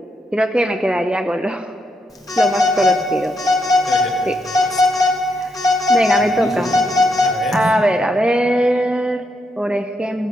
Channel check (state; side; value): normal; both; correlation 0.79